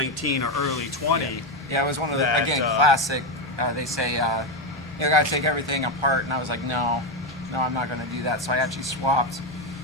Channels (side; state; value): both; normal; correlation 0.10